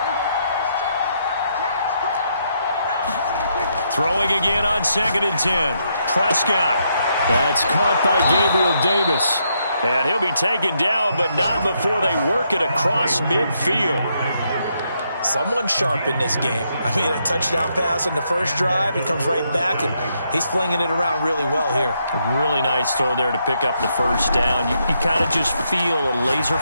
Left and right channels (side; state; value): both; inverted; correlation -0.77